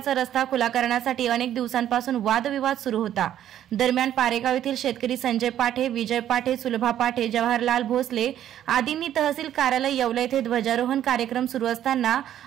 रस्ता खुला करण्यासाठी अनेक दिवसांपासून वादविवाद सुरू होता। दरम्यान पारेगाव येथील शेतकरी संजय पाठे, विजय पाठे, सुलभा पाठे, जवाहरलाल भोसले आदींनी तहसील कार्यालय येवला येथे ध्वजारोहण कार्यक्रम सुरू असताना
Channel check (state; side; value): quieter; left; 11.2 dB